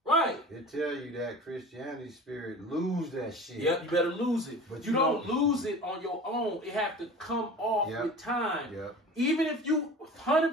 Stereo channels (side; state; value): both; normal; correlation 0.38